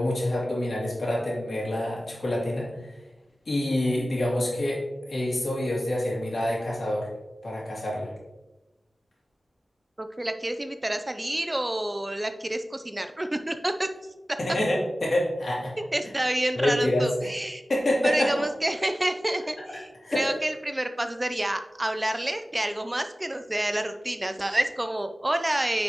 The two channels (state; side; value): normal; both; correlation 0.96